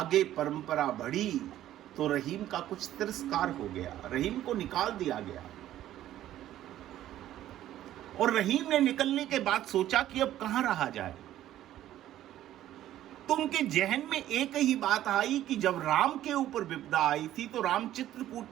परंपरा बढ़ी तो रहीम का कुछ तिरस्कार हो गया, रहीम को निकाल दिया गया। और रहीम ने निकलने के बाद सोचा कि अब कहां रहा जाए। तो उनके जहन में एक ही बात आई कि जब राम के ऊपर विपदा आई थी तो राम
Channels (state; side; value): quieter; left; 12.9 dB